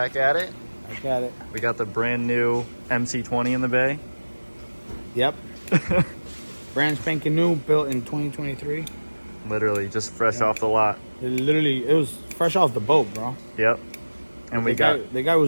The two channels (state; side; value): inverted; both; correlation -1.00